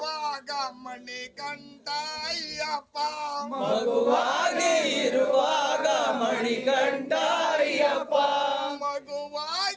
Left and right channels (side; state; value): both; identical; correlation 1.00